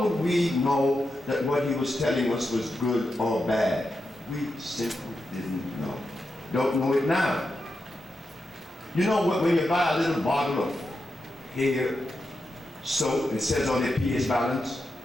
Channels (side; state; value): both; normal; correlation 0.88